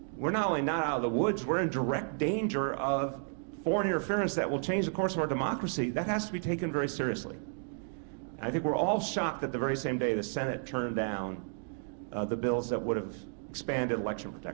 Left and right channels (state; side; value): silent; left; 56 dB below the other